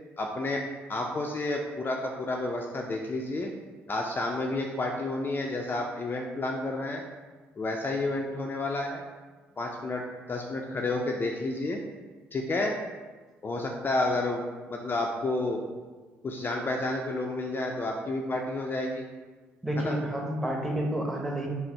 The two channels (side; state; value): both; normal; correlation 0.71